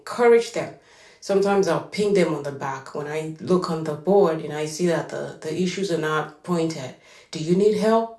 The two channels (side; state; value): both; identical; correlation 1.00